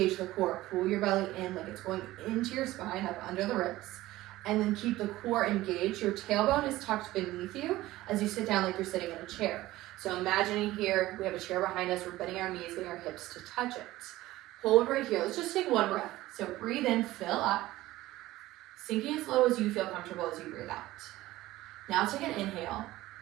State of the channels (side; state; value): left; quieter; 16.9 dB